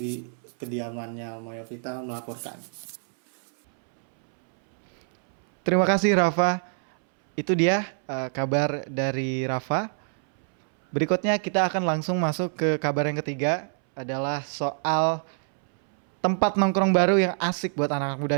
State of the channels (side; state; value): left; silent; 61 dB below the other